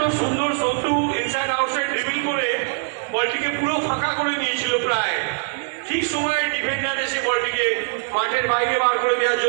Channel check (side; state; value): left; silent; digital silence